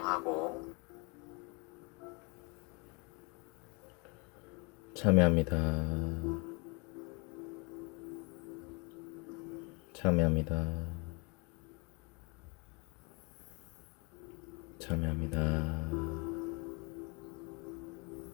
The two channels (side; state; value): right; quieter; 30.7 dB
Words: 참여합니다. 참여합니다. 참여합니다.